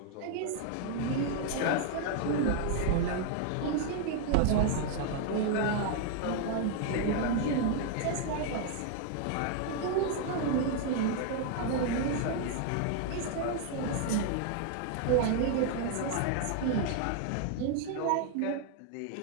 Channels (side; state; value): both; different; correlation 0.00